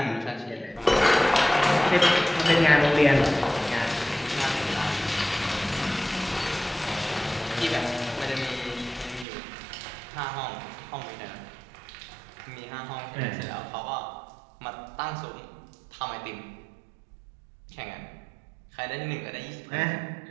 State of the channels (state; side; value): drops out; left; at 9.2 s